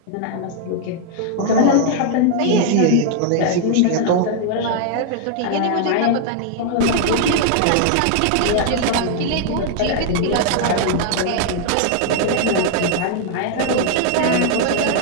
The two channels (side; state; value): both; different; correlation 0.00